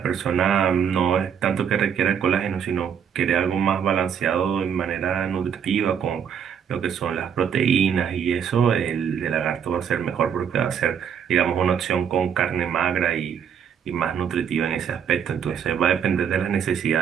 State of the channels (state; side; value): quieter; left; 7.9 dB